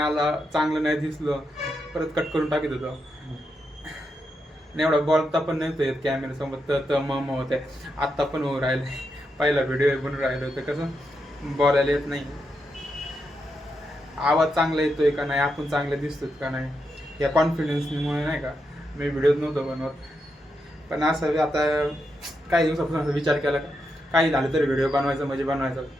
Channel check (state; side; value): normal; both; correlation 0.84